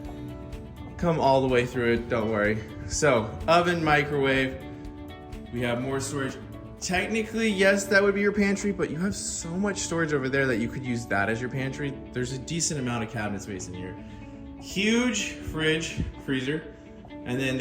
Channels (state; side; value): identical; both; correlation 1.00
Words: Come all the way through it, don't worry. So oven, microwave. We have more storage. Technically, yes, that would be your pantry, but you have so much storage over there that you could use that as your pantry. There's a decent amount of cabinet space in here. Huge fridge, freezer. And then